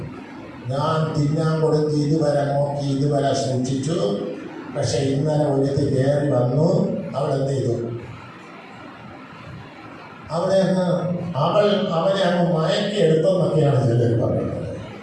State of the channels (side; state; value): both; identical; correlation 1.00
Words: ഞാൻ തിന്നാൻ കൊടുത്ത് ഇതുവരെ നോക്കി ഇതുവരെ സൂക്ഷിച്ചു. പക്ഷെ ഇന്നലെ ഒരുത്തി കയറി വന്നു. അവൾ എന്ത് ചെയ്തു? അവനെ അവനെ അങ്ങ് മയക്കി എടുത്തെന്നൊക്കെയാണ് ചിലർ പറയുന്നത്.